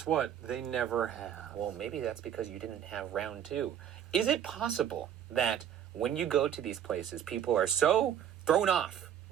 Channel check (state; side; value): quieter; left; 9.6 dB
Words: what? They never have. Well, maybe that's because you didn't have round two. Is it possible that when you go to these places, people are so thrown off